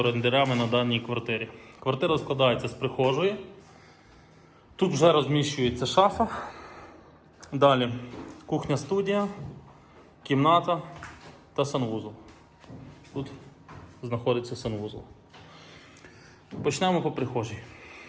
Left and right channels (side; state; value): both; identical; correlation 1.00